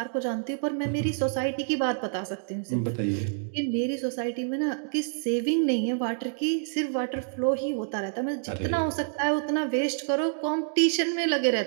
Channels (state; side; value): silent; left; digital silence